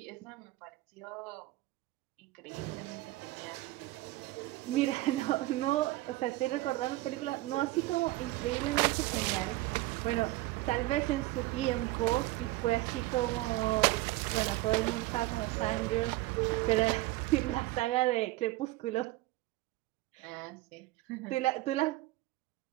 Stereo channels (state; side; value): quieter; left; 18.5 dB